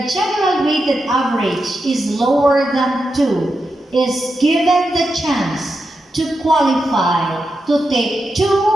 general weighted average is lower than 2 is given the chance to qualify to take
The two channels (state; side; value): normal; both; correlation 0.87